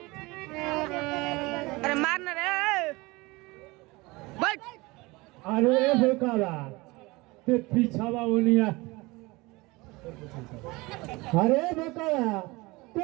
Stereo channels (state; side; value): quieter; left; 23.0 dB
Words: अरे मारना रे बैठ अरे बेकारा ते पीछावा उनिया अरे बेकारा